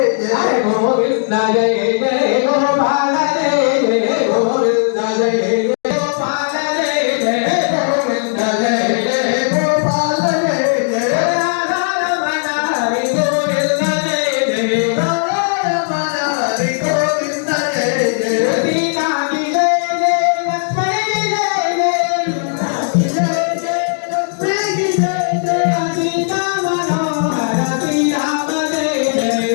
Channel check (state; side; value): silent; right; digital silence